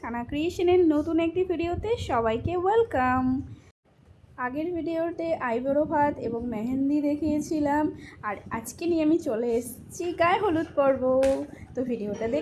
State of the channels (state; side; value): identical; both; correlation 1.00